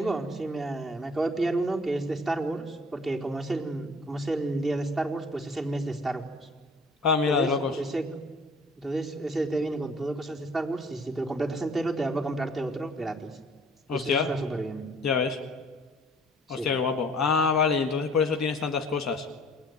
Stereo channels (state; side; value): normal; both; correlation 0.53